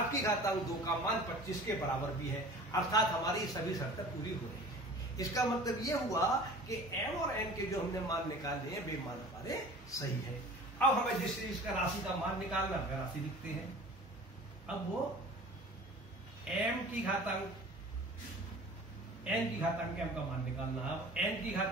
की घातांक 2 का मान 25 के बराबर भी है, अर्थात हमारी सभी शर्तें पूरी हो रही है। इसका मतलब ये हुआ कि m और n के जो हमने मान निकाले हैं वे मान हमारे सही है। अब हमें जिस चीज का राशि का मान निकालना है राशि लिखते हैं। अब वो m की घातांक n की घातांक m का मान निकालना है। अब n की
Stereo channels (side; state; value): both; normal; correlation 0.43